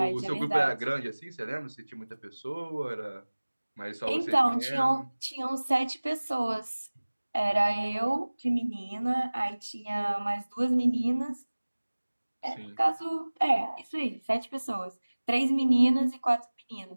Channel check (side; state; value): both; inverted; correlation -1.00